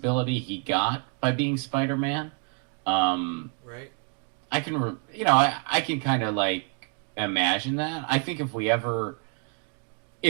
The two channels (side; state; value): left; quieter; 38.6 dB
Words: he got by being Spider-Man. Right. I can, I can kind of like imagine that. I think